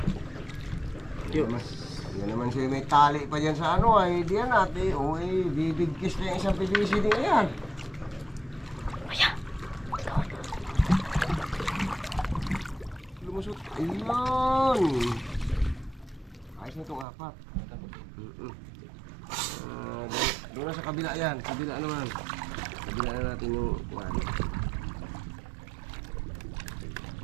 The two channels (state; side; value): drops out; left; at 17.1 s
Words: Yan naman siya may tali pa dyan sa ano ay diyan natin. O bibigkis na yung isang PVC din yan. Lumusot. Ayun. Ayos na itong 4. Doon na sa kabila yan. Kabila naman. Kabila na natin yung ano.